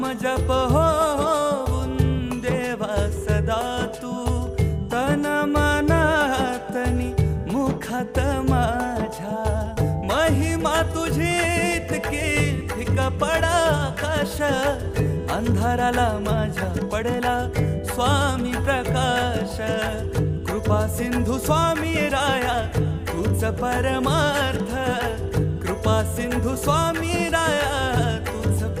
जप होऊन देवा सदा तू तन मनातनी मुखात माझ्या महिमा तुझी इतकी फिका पडा आकाश अंधाराला माझ्या पडला स्वामी प्रकाश कृपा सिंधू स्वामी राया तूच परमार्थ कृपा सिंधू स्वामी राया तूच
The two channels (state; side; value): identical; both; correlation 1.00